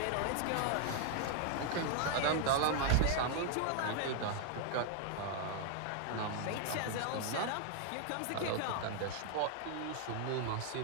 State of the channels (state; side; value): different; both; correlation 0.00